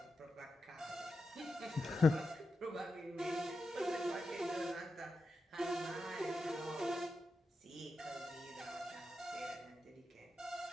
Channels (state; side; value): normal; both; correlation 0.89